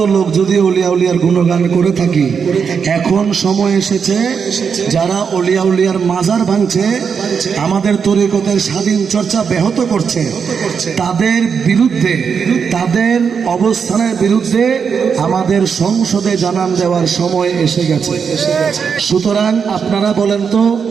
লোক যদি অলিয়া উলিয়ার গুণগান করে থাকি, এখন সময় এসেছে যারা অলিয়া উলিয়ার মাজার ভাঙছে, আমাদের তরিকতের স্বাধীন চর্চা ব্যাহত করছে, তাদের বিরুদ্ধে, তাদের অবস্থানের বিরুদ্ধে আমাদের সংসদে জানান দেওয়ার সময় এসে গেছে। সুতরাং আপনারা বলেন তো,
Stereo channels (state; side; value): quieter; left; 6.4 dB